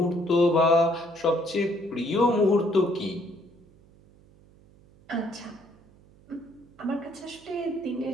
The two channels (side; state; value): right; noise; hum, 27 dB below the sound